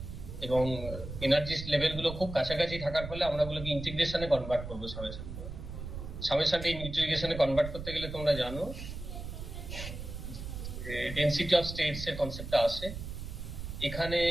এবং এনার্জি লেভেল গুলো খুব কাছাকাছি থাকার ফলে আমরা গুলোকে ইন্টিগ্রেশনে কনভার্ট করবো। সামেশনটা ইন্টিগ্রেশনে কনভার্ট করতে গেলে তোমরা জানো ডেনসিটি অফ স্টেটস এর কনসেপ্টটা আসে। এখানে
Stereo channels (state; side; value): noise; right; rumble, 8 dB below the sound